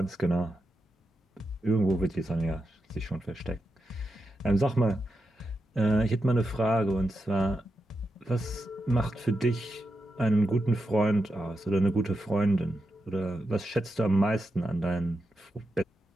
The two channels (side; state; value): both; normal; correlation 0.87